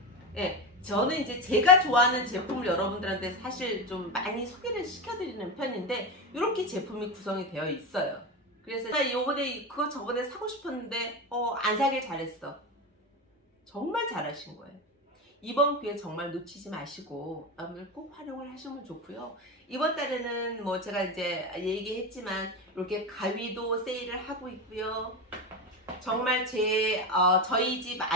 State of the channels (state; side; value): normal; both; correlation 0.18